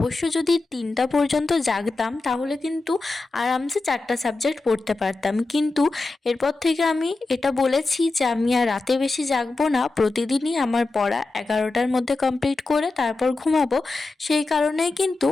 যদি 3টা পর্যন্ত জাগতাম তাহলে কিন্তু আরামসে 4টা সাবজেক্ট পড়তে পারতাম। কিন্তু এরপর থেকে আমি এটা বলেছি যে আমি আর রাতে বেশি জাগবো না, প্রতিদিনই আমার পড়া 11টার মধ্যে কমপ্লিট করে তারপর ঘুমাবো। সেই কারণেই কিন্তু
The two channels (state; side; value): quieter; right; 3.4 dB